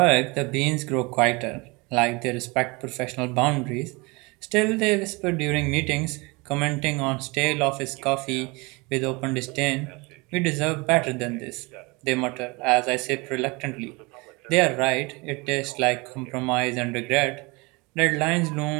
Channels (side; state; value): left; quieter; 26.3 dB